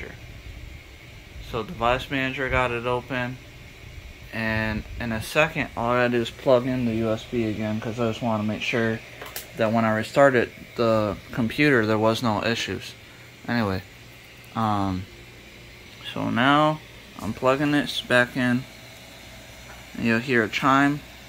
So device manager, got it open, and in a second all I gotta do is plug in the USB again, because I just want to make sure that when I restarted the computer there was no issues. Anyway, so now I'm plugging this back in, and you'll hear a chime.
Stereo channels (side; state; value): both; identical; correlation 1.00